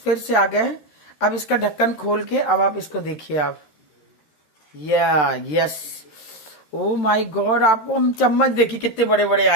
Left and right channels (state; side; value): late; right; 13 ms